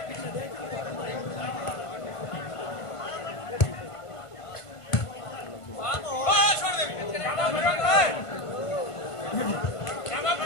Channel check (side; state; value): right; late; 1.5 ms